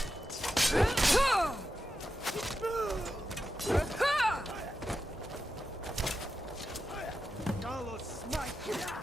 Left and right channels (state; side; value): normal; both; correlation 0.89